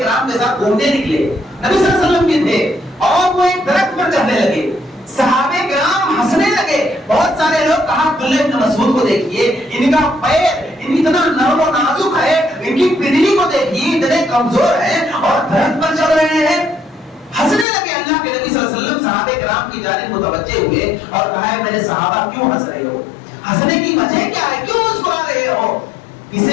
کے ساتھ گھومنے نکلے, نبی صلی اللہ علیہ وسلم کے تھے, اور وہ ایک درخت پر چڑھنے لگے. صحابہ کرام ہنسنے لگے, بہت سارے لوگ کہا عبداللہ ابن مسعود کو دیکھیے، ان کا پیر اتنا نرم و نازک ہے، ان کی پنڈلی کو دیکھیے اتنے کمزور ہیں اور درخت پر چل رہے ہیں۔ ہنسنے لگے اللہ کے نبی صلی اللہ علیہ وسلم صحابہ کرام کی جانب متوجہ ہوئے اور کہا ہے میرے صحابہ کیوں ہنس رہے ہو؟ ہنسنے کی وجہ کیا ہے؟ کیوں مسکرا رہے ہو؟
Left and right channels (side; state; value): right; drops out; at 17.7 s